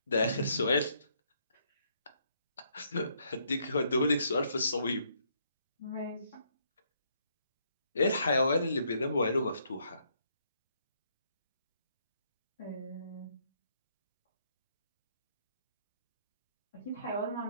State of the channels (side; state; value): both; inverted; correlation -0.72